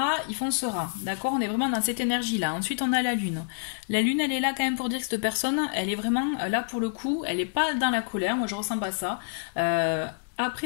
il foncera, d'accord? On est vraiment dans cette énergie-là. Ensuite, on a la lune. La lune, elle est là quand même pour dire que cette personne, elle est vraiment là pour le coup, elle n'est pas dans la colère, moi je ressens pas ça.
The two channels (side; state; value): right; silent; digital silence